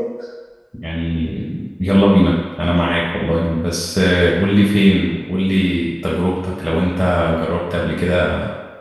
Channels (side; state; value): both; identical; correlation 1.00